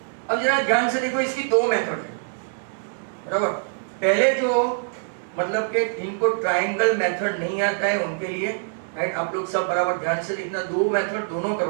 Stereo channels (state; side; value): silent; left; digital silence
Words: अब जरा ध्यान से देखो, इसकी दो मेथड है, बराबर। पहले जो मतलब कि जिनको ट्रायंगल मेथड नहीं आता है उनके लिए राइट, आप लोग सब बराबर ध्यान से देखना, दो मेथड दोनों